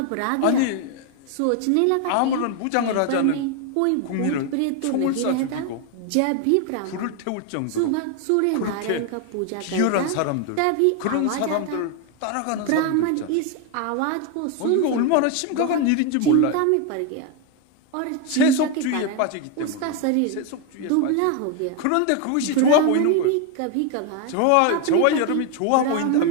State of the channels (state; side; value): different; both; correlation 0.01